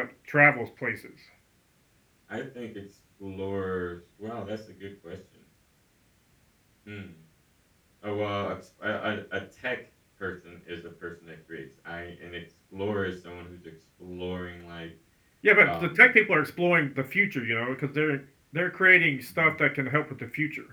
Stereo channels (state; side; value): identical; both; correlation 1.00